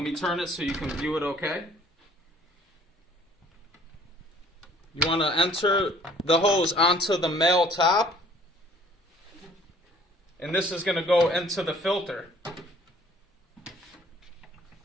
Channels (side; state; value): both; normal; correlation 0.55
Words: me turn it so you can view it okay. You want to enter the hose onto the male top. And this is going to go into the filter.